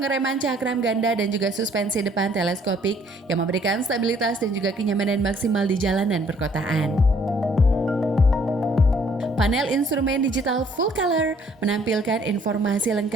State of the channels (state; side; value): normal; both; correlation 0.62